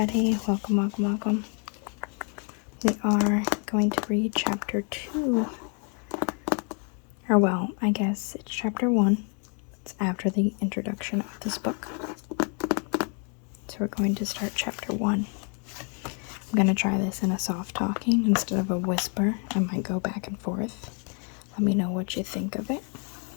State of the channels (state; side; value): quieter; right; 38.9 dB